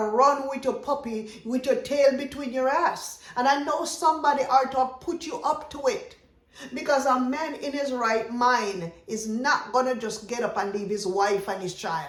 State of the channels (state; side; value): identical; both; correlation 1.00